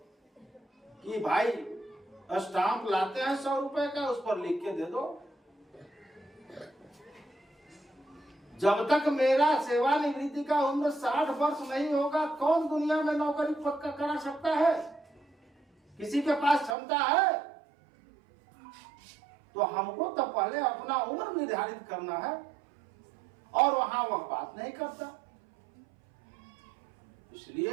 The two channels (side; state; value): left; drops out; at 16.8 s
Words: कि भाई स्टाम्प लाते हैं 100 रुपए का, उस पर लिख के दे दो। जब तक मेरा सेवानिवृत्ति का उम्र 60 वर्ष नहीं होगा, कौन दुनिया में नौकरी पक्का करा सकता है? किसी के पास क्षमता है? तो हमको तो पहले अपना उम्र निर्धारित करना है, और वहां वह बात नहीं करता।